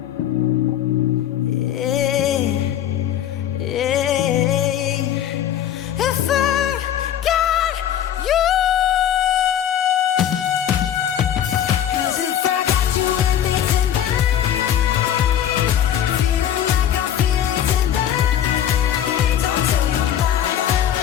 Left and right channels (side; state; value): right; quieter; 10.3 dB